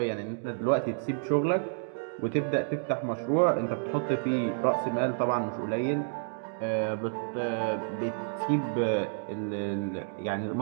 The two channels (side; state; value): left; silent; digital silence